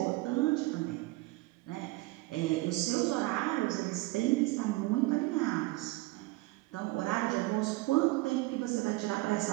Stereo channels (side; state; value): left; quieter; 20.7 dB